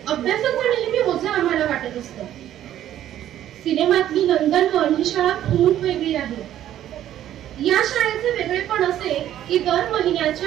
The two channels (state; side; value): quieter; left; 11.9 dB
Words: अभ्यासाचं नेहमी ओझं आम्हाला वाटत असतं. सिनेमातली नंदनवन ही शाळा खूप वेगळी आहे. या शाळेचे वेगळेपण असे की दर